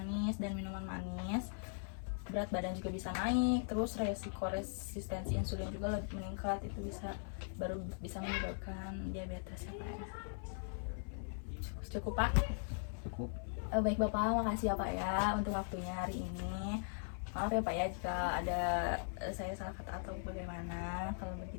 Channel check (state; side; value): silent; right; 51 dB below the other